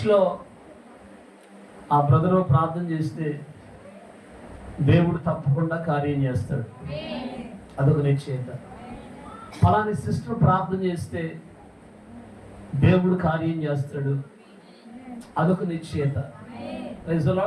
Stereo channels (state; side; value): identical; both; correlation 1.00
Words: ఆ బ్రదరు ప్రార్థన చేస్తే దేవుడు తప్పకుండా కార్యం చేస్తాడు, అదొక నిశ్చయిత. ఫలాని సిస్టర్ ప్రార్థన చేస్తే దేవుడు కార్యం చేస్తాడు, అదొక నిశ్చయిత. Praise the